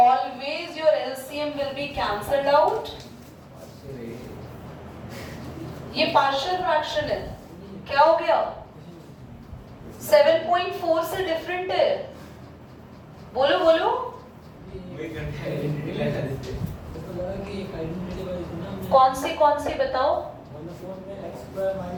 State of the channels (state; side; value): identical; both; correlation 1.00